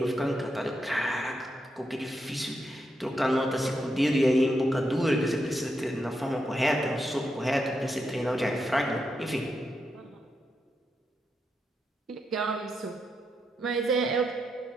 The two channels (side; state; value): both; normal; correlation 0.83